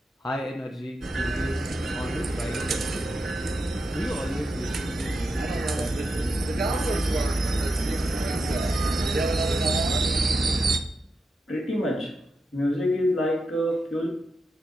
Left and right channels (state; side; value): normal; both; correlation 0.87